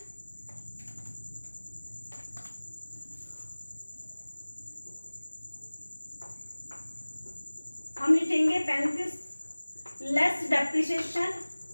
हम लिखेंगे 35 लेस डेप्रिसिएशन।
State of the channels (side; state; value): both; inverted; correlation -1.00